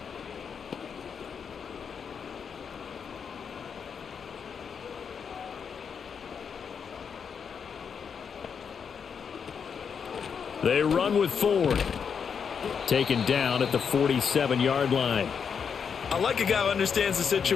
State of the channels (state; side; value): quieter; right; 6.7 dB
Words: They run with Ford. Taken down at the 47-yard line. I like a guy who understands the